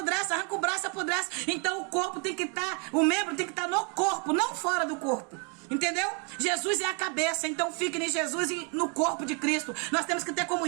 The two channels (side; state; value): left; quieter; 36.2 dB